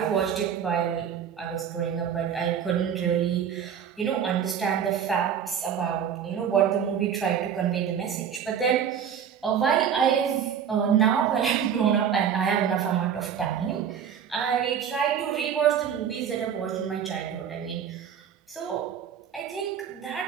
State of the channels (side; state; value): left; quieter; 8.2 dB